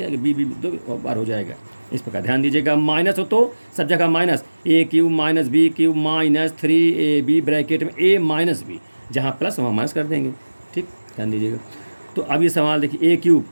b 2 बार हो जाएगा, इस प्रकार ध्यान दीजिएगा। माइनस हो तो सब जगह minus, a³ - b³ -3ab bracket में a माइनस b, जहाँ प्लस वहाँ माइनस कर देंगे, ठीक, ध्यान दीजिएगा। तो अब ये सवाल देखिए, a³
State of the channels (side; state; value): both; inverted; correlation -1.00